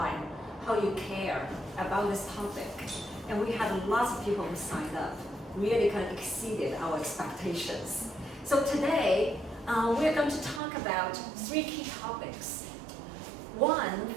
and how you care about this topic. And we had lots of people who signed up, really kind of exceeded our expectations. So today, we're going to talk about 3 key topics.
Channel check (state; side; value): drops out; left; at 10.6 s